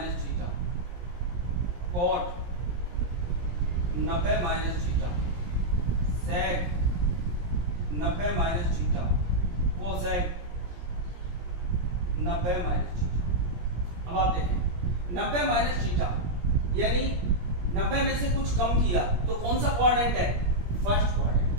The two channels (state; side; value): late; left; 17 ms